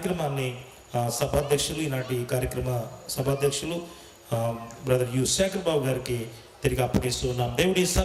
సభాధ్యక్షులు, ఈనాటి కార్యక్రమ సభాధ్యక్షులు బ్రదర్ యు శేఖర్ బాబు గారికి తిరిగి అప్పగిస్తూ ఉన్నాం. దేవుడి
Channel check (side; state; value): both; identical; correlation 1.00